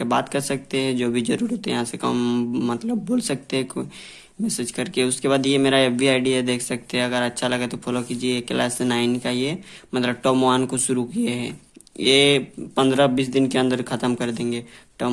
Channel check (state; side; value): identical; both; correlation 1.00